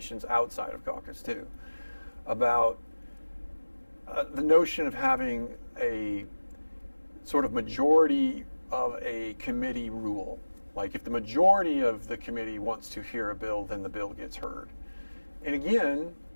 outside of caucus too, about the notion of having a sort of majority of a committee rule. Like, if the majority of the committee wants to hear a bill, then the bill gets heard. And again,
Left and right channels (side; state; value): both; inverted; correlation -1.00